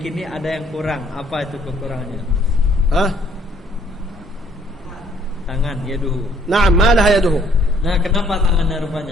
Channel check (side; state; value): both; normal; correlation 0.63